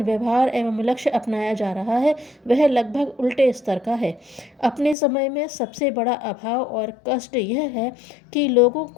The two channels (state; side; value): drops out; right; at 5.0 s